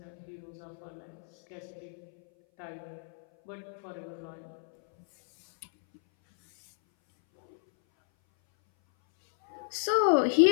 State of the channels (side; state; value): right; silent; 57 dB below the other